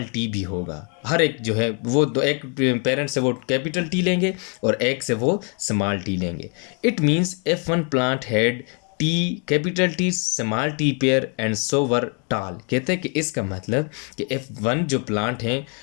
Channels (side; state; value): right; quieter; 37.7 dB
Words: टी भी होगा। हर एक जो है वो दो, एक पेरेंट से वो कैपिटल टी लेंगे और एक से वो स्मॉल टी लेंगे। It means F1 plant had t capital t small t pair and so were tall. कहते हैं कि इसका मतलब कि F1 जो प्लांट हैं